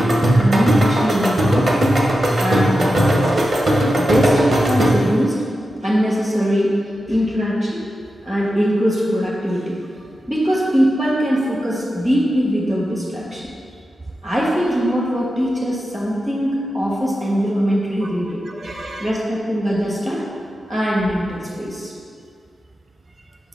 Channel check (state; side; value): normal; both; correlation 0.91